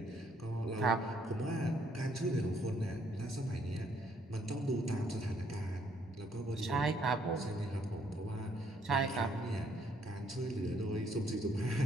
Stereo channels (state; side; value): normal; both; correlation 0.68